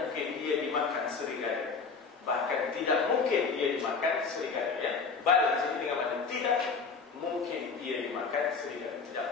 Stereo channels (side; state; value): right; quieter; 5.0 dB